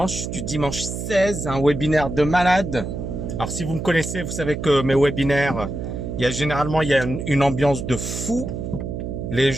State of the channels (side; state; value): right; noise; hum, 5 dB below the sound